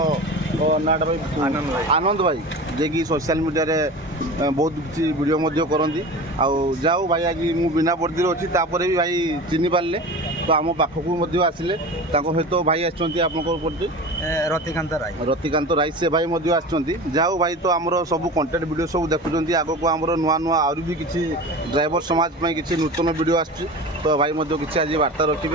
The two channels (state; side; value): normal; both; correlation 0.33